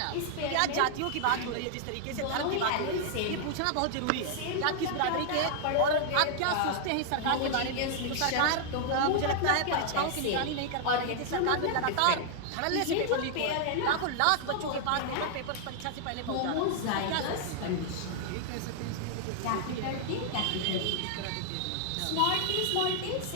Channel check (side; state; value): both; different; correlation -0.01